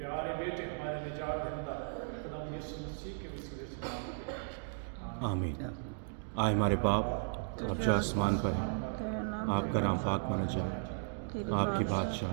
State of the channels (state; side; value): silent; left; digital silence